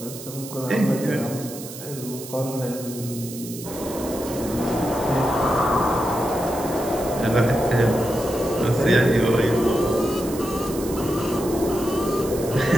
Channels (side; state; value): right; noise; hiss, 13 dB below the sound